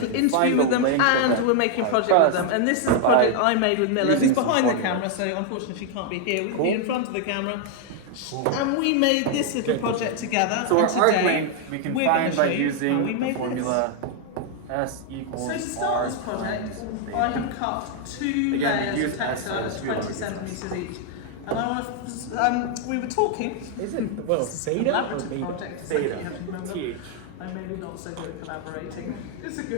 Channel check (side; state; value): both; different; correlation 0.00